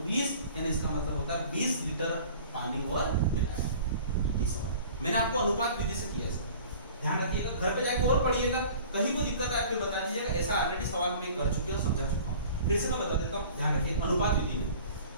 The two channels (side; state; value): both; inverted; correlation -0.46